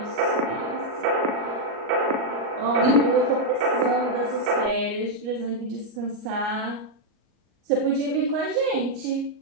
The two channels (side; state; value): left; late; 38 ms